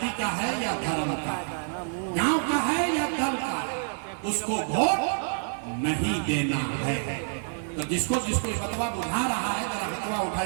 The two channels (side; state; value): left; silent; 60 dB below the other